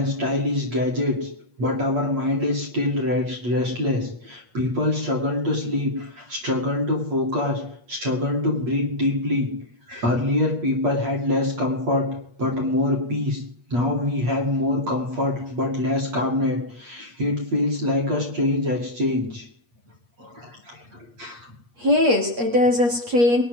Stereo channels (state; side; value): late; left; 8.5 ms